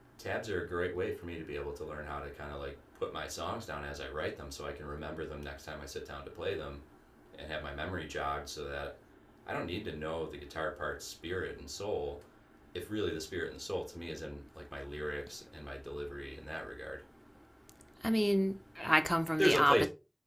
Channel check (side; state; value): both; identical; correlation 1.00